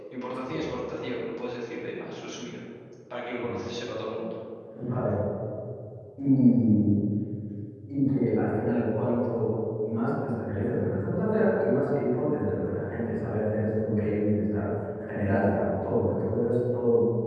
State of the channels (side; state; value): both; identical; correlation 1.00